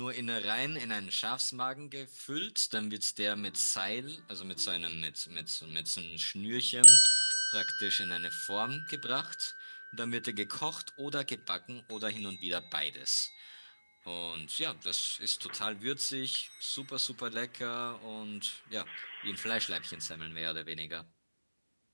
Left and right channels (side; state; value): both; inverted; correlation -1.00